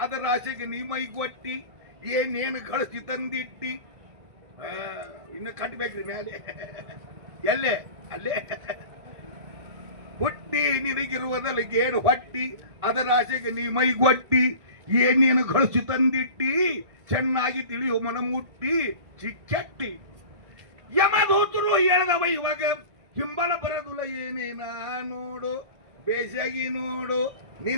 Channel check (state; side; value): late; left; 1.7 ms